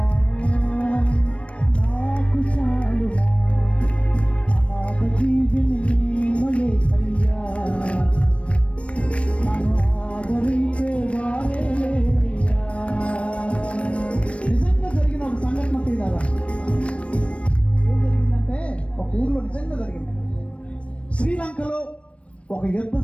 నాకు చాలునా. అనాథ జీవిని నేను యేసయ్యా, నన్ను ఆదరించే వారే లేరయ్యా. నిజంగా జరిగిన ఒక సంఘటన తీరారా. ఏం జరిగిందంటే ఒక ఊర్లో నిజంగా జరిగింది. శ్రీలంకలో ఒక యుద్ధ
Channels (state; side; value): late; right; 0.062 ms